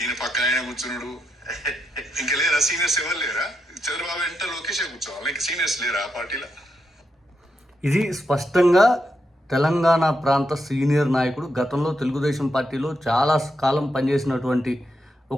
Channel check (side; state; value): both; normal; correlation 0.83